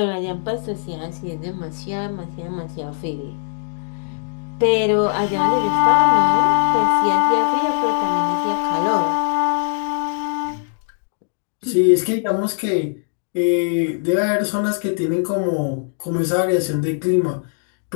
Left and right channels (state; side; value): silent; right; digital silence